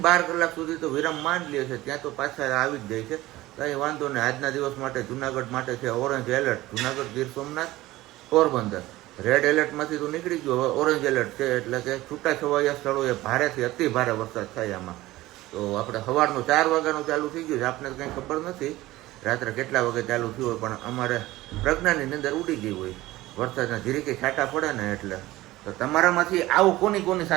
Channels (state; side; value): quieter; left; 17.5 dB